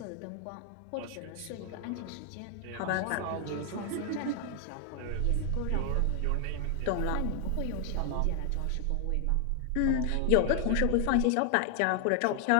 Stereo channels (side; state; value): both; different; correlation 0.00